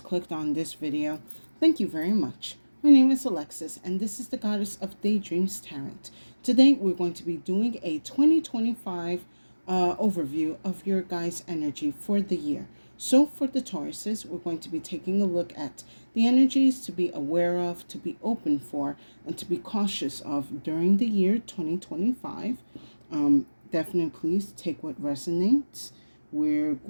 clicked on this video, thank you very much. My name is Alexis and this is the Goddess of Daydreams Tarot. Today we're going to be doing a 2025 overview of your guys' energy for the year. So for the Tauruses, we're going to be taking a look at the energies to be aware of, to be open for, and to be cautious of during the year 2025. Definitely please take what resonates. We're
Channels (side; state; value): both; inverted; correlation -1.00